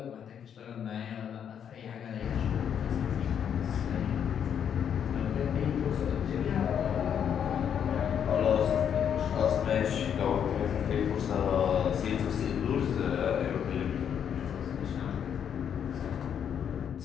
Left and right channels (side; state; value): right; quieter; 8.4 dB